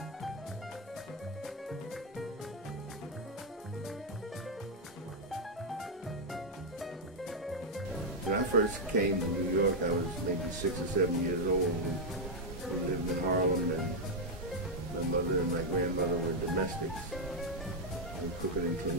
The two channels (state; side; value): normal; both; correlation -0.01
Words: When I first came to New York, I was maybe 6 or 7 years old. We lived in Harlem, and my mother and my grandmother were domestics. And cooking and